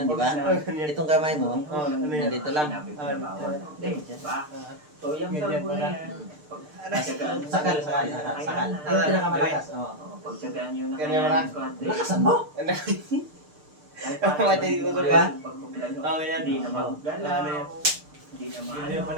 di ba? Ganyan. Itong kamay mo, Oo, ano yan? nandito lang. Hindi, diba? So, yung salbo na yan, Sakal, sakal, sakal. Yung pinakamalakas. Oo. pagtsagaan nyo na Ganyan kaya wala. ko, ate. Lakasan mo! Ano? Kahit Mati ko Di sa ba? pagpapilan nyo, Oo, yan. hindi na Oo. maggalaw, Ano yan? hindi na Ganyan maano.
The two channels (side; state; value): left; late; 6.6 ms